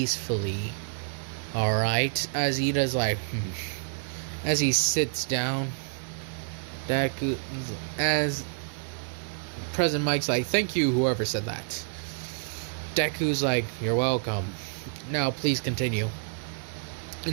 Alright? As Ida's like, As he sits down, Deku, as President Mike's like, thank you, whoever said that. Deku's like, you're welcome. Now, please continue.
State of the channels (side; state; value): left; silent; digital silence